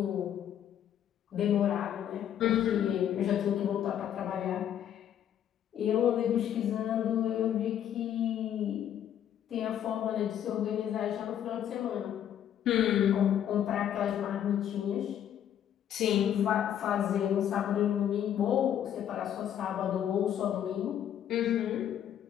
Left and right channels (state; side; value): quieter; right; 10.1 dB